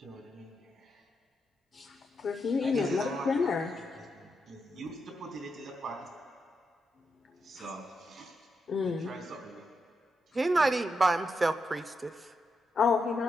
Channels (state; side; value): normal; both; correlation 0.84